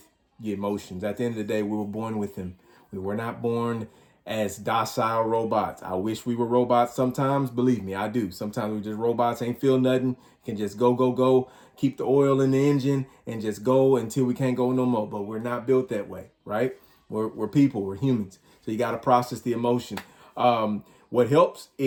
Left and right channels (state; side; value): identical; both; correlation 1.00